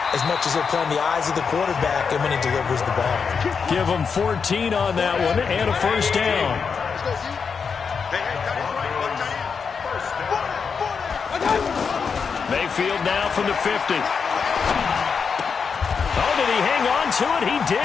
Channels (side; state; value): right; quieter; 5.8 dB